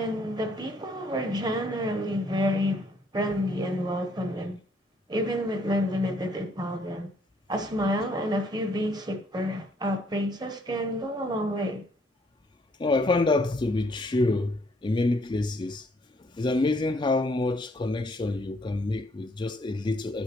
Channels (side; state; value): both; normal; correlation 0.66